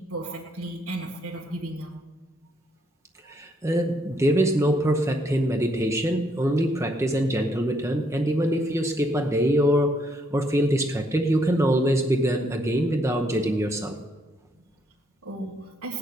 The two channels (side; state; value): both; normal; correlation 0.72